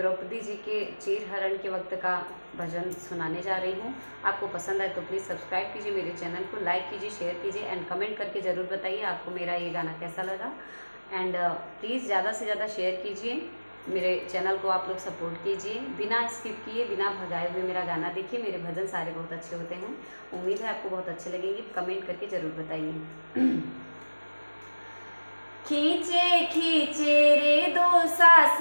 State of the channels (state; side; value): inverted; both; correlation -1.00